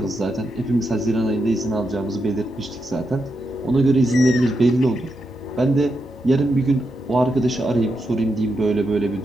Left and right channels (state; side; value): normal; both; correlation 0.85